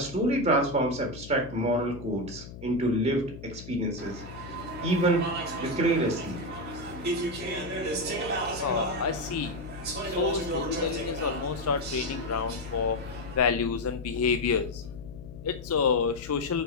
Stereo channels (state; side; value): noise; left; hum, 14 dB below the sound